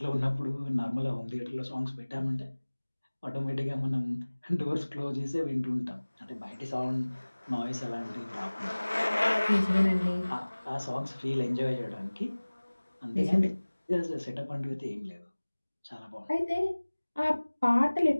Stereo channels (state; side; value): inverted; both; correlation -1.00